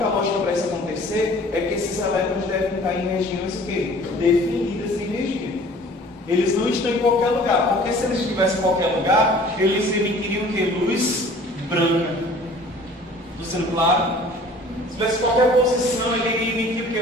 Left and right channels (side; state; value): both; normal; correlation 0.49